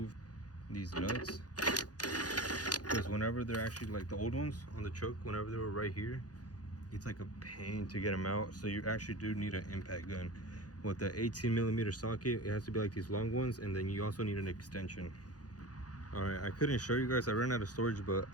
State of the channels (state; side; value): late; right; 0.68 ms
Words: these nuts, because whenever they're actually like the old ones on the truck, whenever they were right here, it's like a pain to get them out. So you actually do need an impact gun. With the 18mm socket, it has to be like these long ones, and then you also need an extension. All right, I couldn't show you guys, I ran out of storage, but